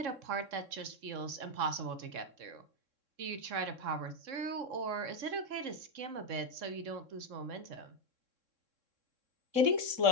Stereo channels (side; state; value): left; late; 3.6 ms